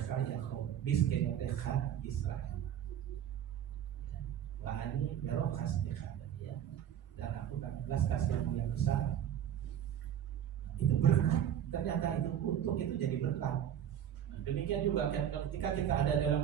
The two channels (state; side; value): quieter; left; 9.9 dB